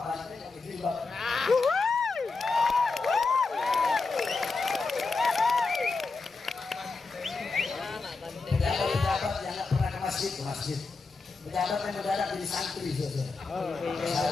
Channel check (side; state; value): right; quieter; 4.1 dB